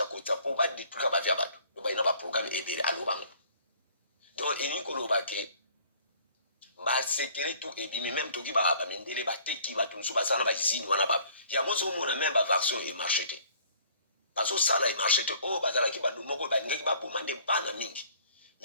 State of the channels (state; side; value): inverted; both; correlation -0.55